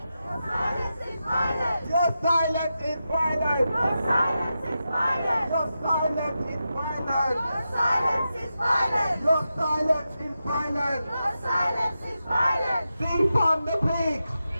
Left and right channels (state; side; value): inverted; both; correlation -0.89